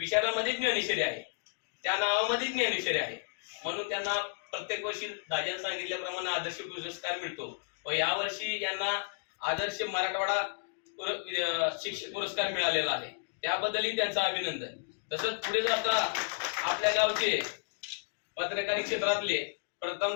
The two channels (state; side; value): silent; right; digital silence